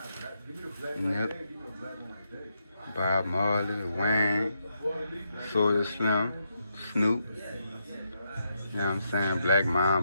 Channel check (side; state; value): both; inverted; correlation -0.81